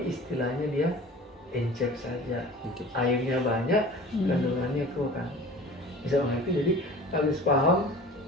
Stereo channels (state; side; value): normal; both; correlation 0.41